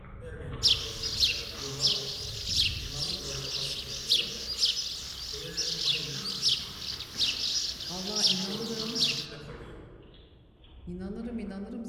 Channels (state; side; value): identical; both; correlation 1.00